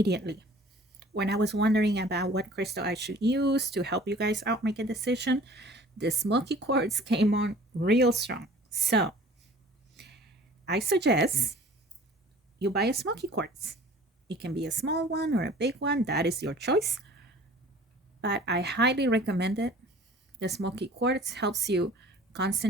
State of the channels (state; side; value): normal; both; correlation 0.48